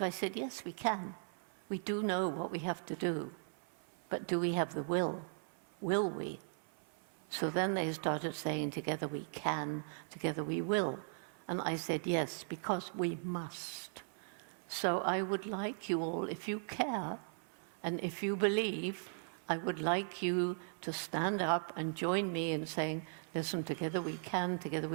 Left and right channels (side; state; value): left; silent; 52 dB below the other